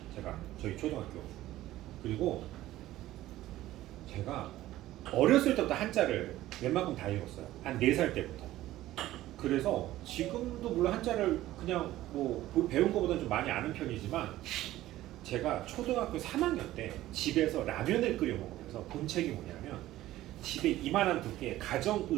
제가 저희 초등학교. 그리고 제가 어렸을 때부터 한자를 웬만큼 다 읽었어요. 한 4살 때부터. 그래서 지금도 물론 한자를 그냥 뭐 배운 것보다는 좀 많이 아는 편이지만 제가 초등학교 3학년 때 집에서 라면을 끓여 먹으면서 본 책이 뭐냐면 집에 이만한 두께의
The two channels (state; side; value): quieter; left; 15.2 dB